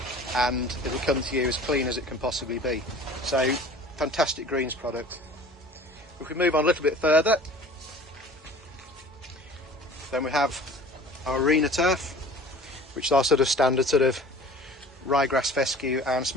and it'll come to you as clean as it can possibly be. So fantastic greens product. If we move on a little bit further, then we have our arena turf, which is our sort of standard sort of ryegrass, fescue and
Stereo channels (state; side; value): normal; both; correlation 0.44